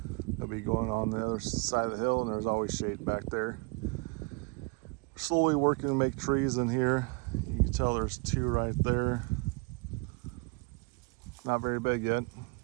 they'll be going on the other side of the hill, and there's always shade back there. Slowly working to make trees in here. You can tell there's two right there. Not very big yet.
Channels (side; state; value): left; quieter; 30.8 dB